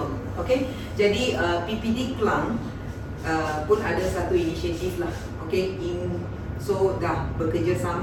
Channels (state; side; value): identical; both; correlation 1.00